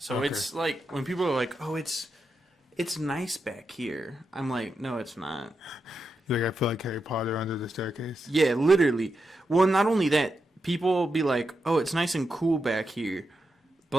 okay. It's like, when people are like, oh, it's nice back here. I'm like, no, it's not. Like, I feel like Harry Potter under the staircase. Yeah, literally. Well, not only that, people will be like, oh, it's nice and cool back here.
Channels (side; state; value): both; normal; correlation 0.86